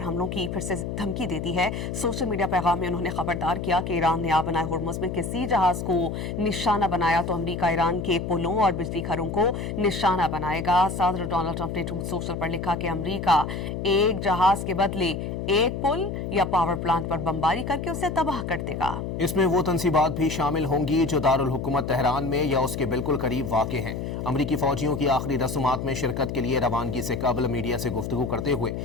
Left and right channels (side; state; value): left; noise; hum, 5 dB below the sound